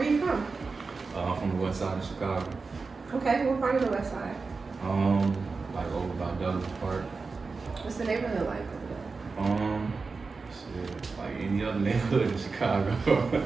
you from? I'm from the west side of Chicago. Okay, what part of the west side? Like over by Douglas Park. What's the neighborhood like over there? Shit, like any other neighborhood in Chicago.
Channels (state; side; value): quieter; left; 4.3 dB